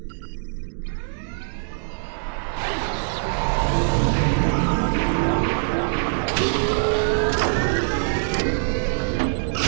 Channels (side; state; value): left; silent; digital silence